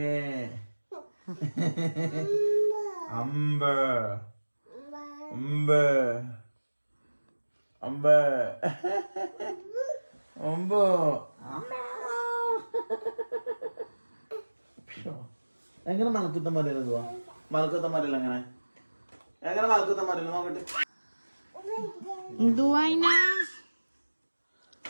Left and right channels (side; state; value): both; inverted; correlation -1.00